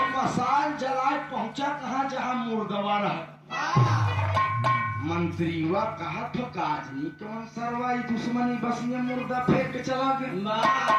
मसाल जलाए पहुंचा कहा जहां मुर्दवा रहा। मंत्रीवा कहा तो काजनी कौन सरवाई दुश्मनी बस ये मुर्दा फेंक के चला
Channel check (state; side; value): identical; both; correlation 1.00